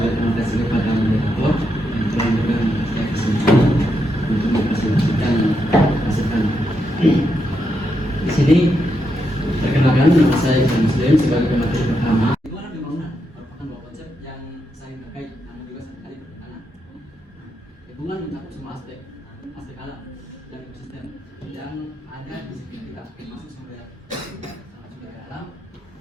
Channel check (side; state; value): both; normal; correlation 0.82